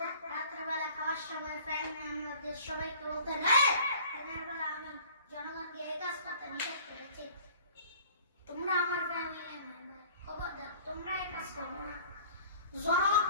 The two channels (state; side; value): inverted; both; correlation -0.49